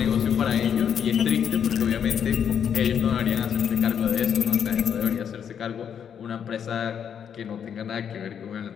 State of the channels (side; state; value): right; quieter; 8.1 dB